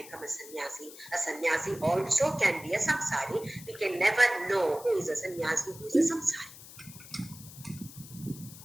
a sannyasi. A sannyasi also can be a samsari. We can never know who is a sannyasi, who is a samsari.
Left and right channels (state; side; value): noise; left; hiss, 17 dB below the sound